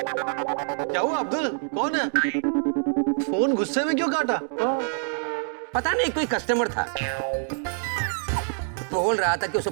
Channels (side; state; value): left; silent; digital silence